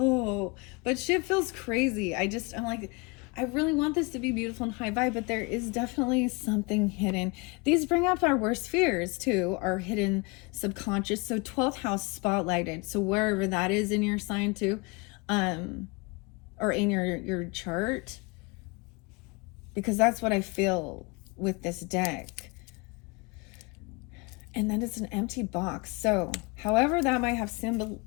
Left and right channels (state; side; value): quieter; right; 28.5 dB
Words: but shit feels crazy. I'm like, I really want this to be beautiful and high vibe, but there is definitely something hidden. These bring up our worst fears too, our hidden subconscious. So 12th house spotlighted. So wherever that is in your sign too, or in your chart, because that's what I feel with this deck. And then it's an empty box. So however that might have